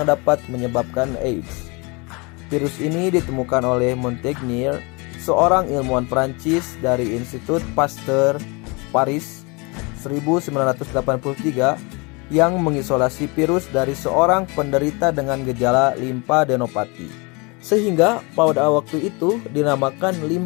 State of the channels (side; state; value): right; quieter; 28.8 dB